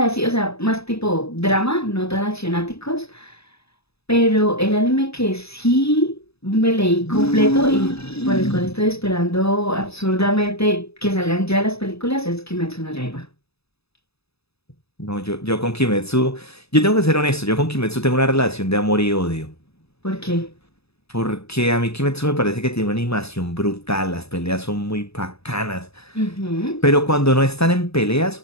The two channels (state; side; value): late; right; 0.79 ms